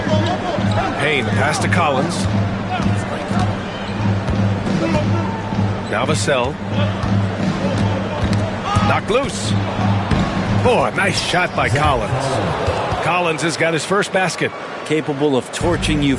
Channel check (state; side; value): identical; both; correlation 1.00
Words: Payne, pass to Collins. Now Vassell. Knocked loose. Oh, a nice shot by Collins. Collins has got his first basket. Capable of torching you